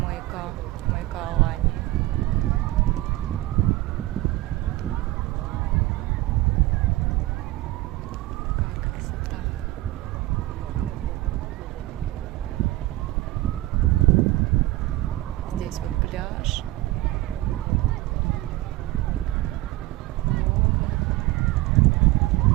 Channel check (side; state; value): left; quieter; 18.1 dB